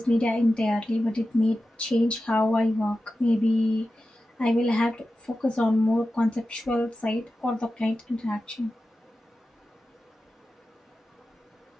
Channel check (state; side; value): normal; both; correlation 0.93